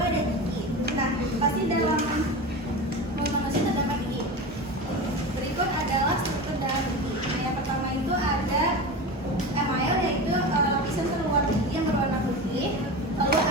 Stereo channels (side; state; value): both; normal; correlation 0.27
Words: ada gigi. Nah, pasti dalam mulut manusia terdapat gigi. Berikut adalah struktur dalam gigi. Nah, yang pertama itu ada email, yaitu lapisan terluar gigi yang berwarna putih. Lalu